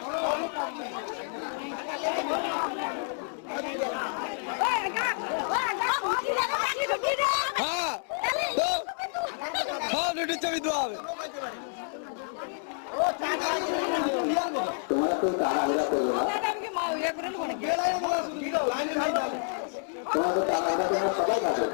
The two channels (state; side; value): silent; right; 59 dB below the other